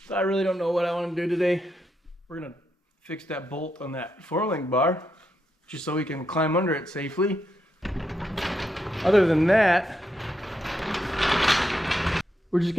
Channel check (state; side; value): normal; both; correlation 0.82